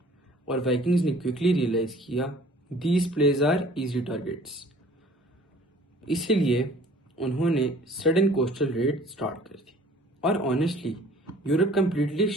اور وائکنگز نے کوئکلی ریئلائز کیا these places are easy targets. اسی لیے انہوں نے سڈن کوسٹل ریڈ سٹارٹ کر دی، اور آنیسٹلی یورپ کمپلیٹلی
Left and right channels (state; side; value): normal; both; correlation 0.51